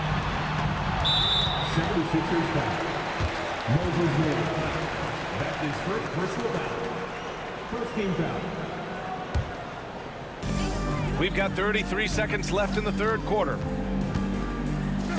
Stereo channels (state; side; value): identical; both; correlation 1.00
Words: 76ers foul. Moses Moody. That's his first personal foul. First team foul. We've got 33 seconds left in the third quarter.